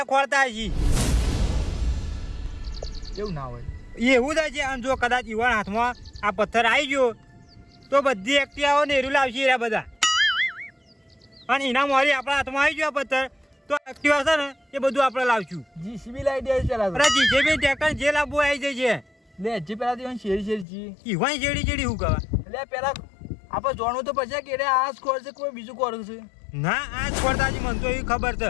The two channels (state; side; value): drops out; right; at 20.7 s